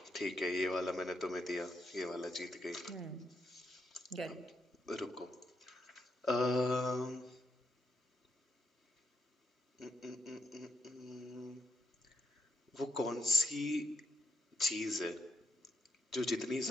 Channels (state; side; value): normal; both; correlation 0.80